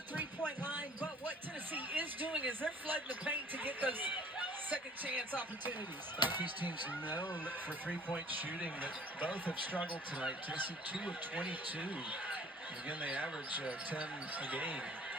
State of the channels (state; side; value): normal; both; correlation 0.52